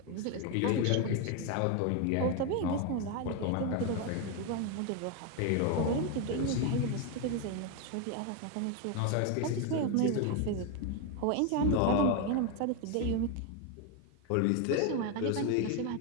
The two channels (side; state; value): both; different; correlation 0.01